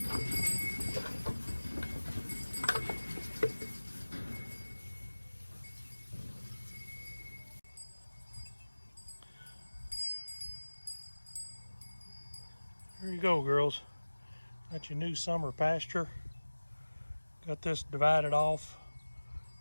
There you go, girls. Got your new summer pasture. Got this divided off.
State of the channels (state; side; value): inverted; both; correlation -1.00